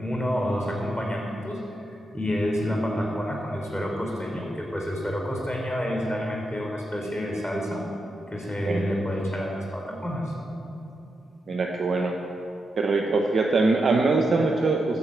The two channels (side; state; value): both; normal; correlation 0.86